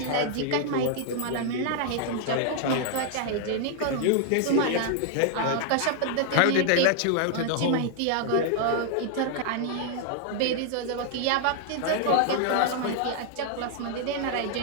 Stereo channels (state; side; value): different; both; correlation 0.00